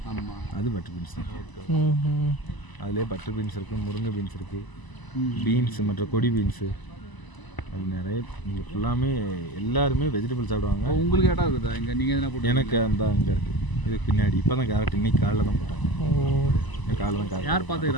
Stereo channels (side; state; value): right; late; 1.0 ms